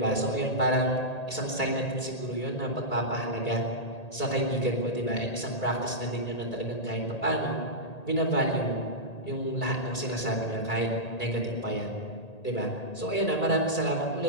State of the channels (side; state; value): right; late; 1.8 ms